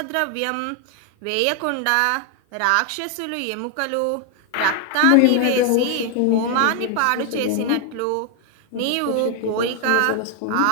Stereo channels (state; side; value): different; both; correlation 0.00